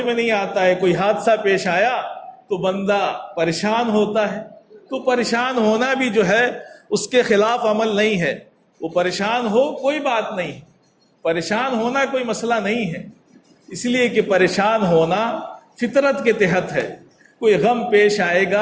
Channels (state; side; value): identical; both; correlation 1.00